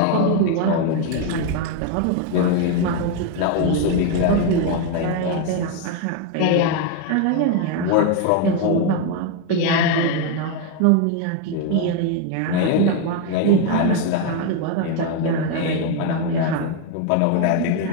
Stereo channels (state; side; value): different; both; correlation 0.01